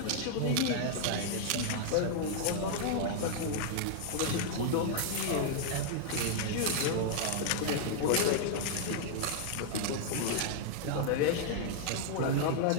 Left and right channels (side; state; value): both; different; correlation -0.01